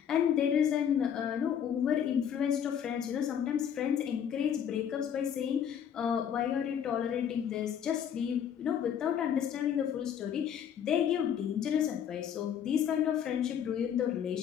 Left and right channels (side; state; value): right; quieter; 8.7 dB